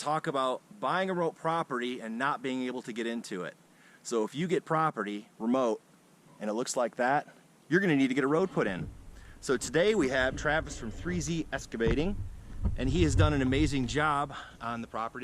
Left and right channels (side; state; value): both; identical; correlation 1.00